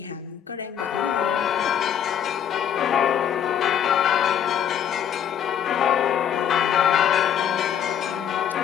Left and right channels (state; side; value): quieter; right; 9.3 dB